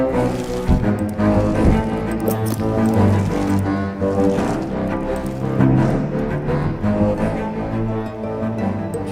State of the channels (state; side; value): identical; both; correlation 1.00